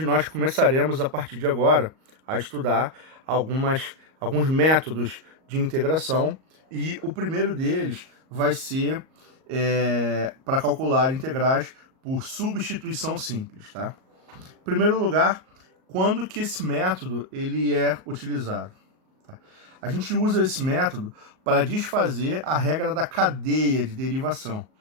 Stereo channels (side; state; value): left; late; 38 ms